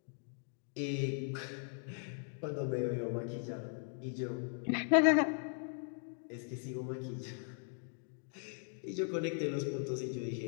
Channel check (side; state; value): right; silent; 52 dB below the other